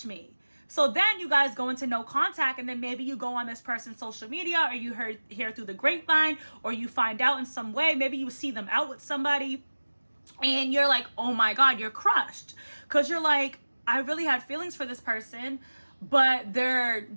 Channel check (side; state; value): both; inverted; correlation -1.00